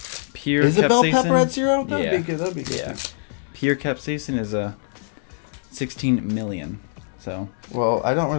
Pure is a bell pepper at 0? That'd be good. That'd be good. Yeah. Pure capsaicin is a 16 million. So. Well, I don't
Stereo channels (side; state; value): right; silent; 63 dB below the other